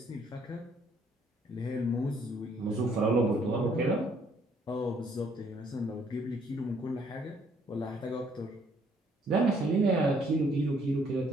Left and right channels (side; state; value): both; normal; correlation 0.65